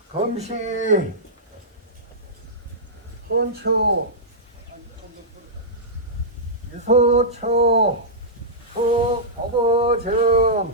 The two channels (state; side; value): normal; both; correlation -0.14